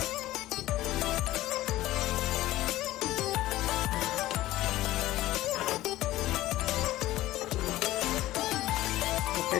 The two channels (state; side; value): quieter; right; 16.0 dB